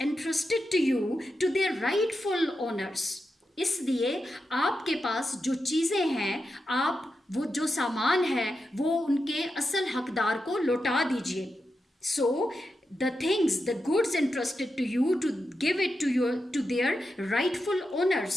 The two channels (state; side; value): normal; both; correlation 0.88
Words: entrusted to you to their rightful owners. इसलिए आपके पास जो चीज़ें हैं, आप वो जो सामान है वो उनके असल हकदार को लौटा दीजिए. So the things, the goods entrusted to you, to give it to their rightful